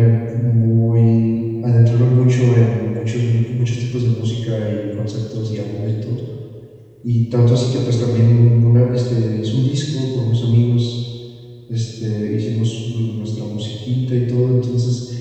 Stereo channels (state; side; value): identical; both; correlation 1.00